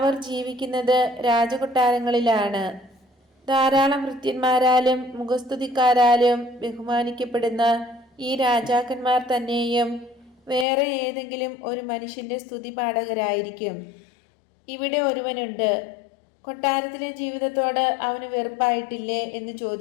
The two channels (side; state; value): right; drops out; at 10.7 s